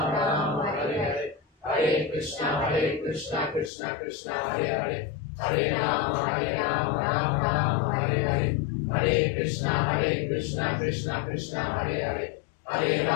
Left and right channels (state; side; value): drops out; right; at 3.7 s